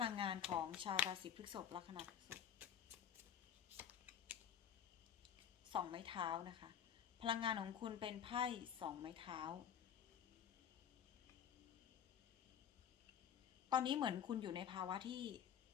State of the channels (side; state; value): right; quieter; 9.1 dB